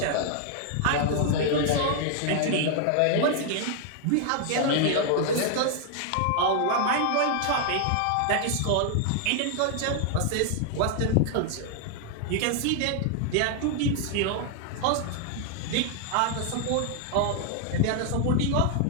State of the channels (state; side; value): different; both; correlation 0.00